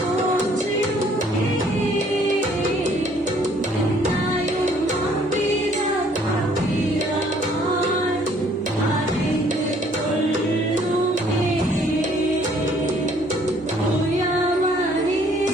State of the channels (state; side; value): normal; both; correlation 0.61